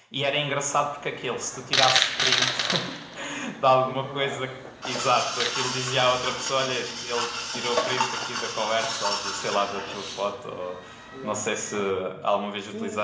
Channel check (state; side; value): identical; both; correlation 1.00